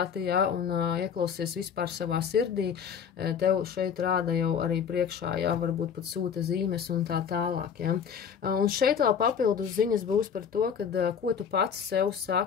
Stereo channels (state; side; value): quieter; right; 7.3 dB